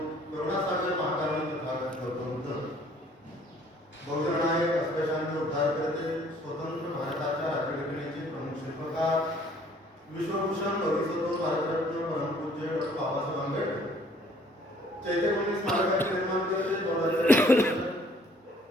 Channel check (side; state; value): both; normal; correlation 0.58